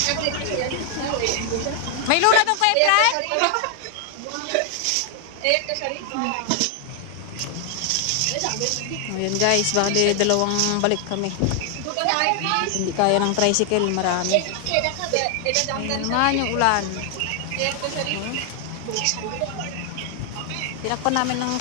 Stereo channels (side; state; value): both; different; correlation 0.00